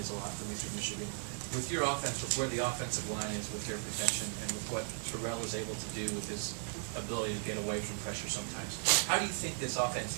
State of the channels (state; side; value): silent; left; 53 dB below the other